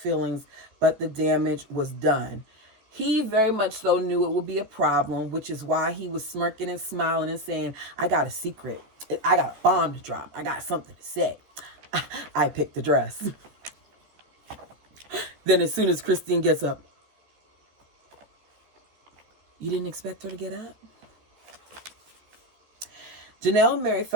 but the damage was done. He very much so knew it would be a problem, which is why he was smirking and smiling and saying, I got a secret. I got a bomb to drop. I got something to say. I picked the dress. Then as soon as Christine gets up, you didn't expect her to get up? Janelle and Mary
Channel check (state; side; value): late; left; 14 ms